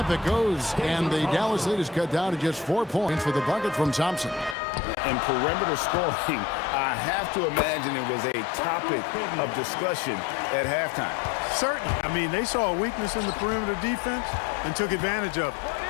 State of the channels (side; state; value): right; drops out; at 4.5 s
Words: it goes. And the Dallas lead is cut down to just 4 points with a bucket from Thompson. And perimeter scoring, I have to imagine it was a topic of discussion at halftime. Certainly. I mean, they saw a weakness in the perimeter defense and took advantage of it.